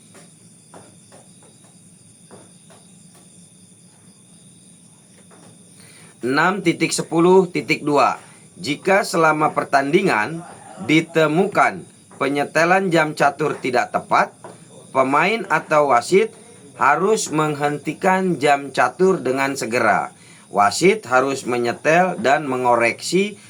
(6.10.2) Jika selama pertandingan ditemukan penyetelan jam catur tidak tepat, pemain atau wasit harus menghentikan jam catur dengan segera. Wasit harus menyetel dan mengoreksi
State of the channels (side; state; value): both; identical; correlation 1.00